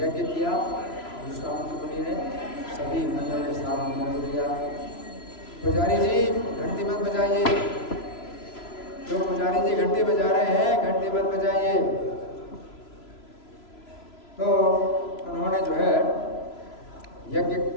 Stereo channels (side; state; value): right; late; 3.0 ms